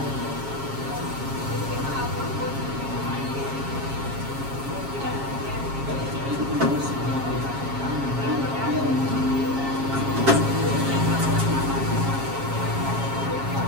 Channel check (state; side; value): late; left; 7.3 ms